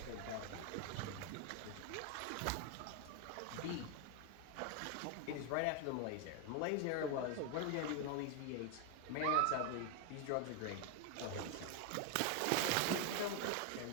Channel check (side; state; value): both; different; correlation 0.01